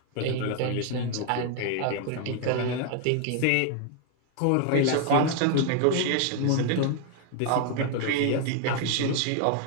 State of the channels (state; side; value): different; both; correlation 0.00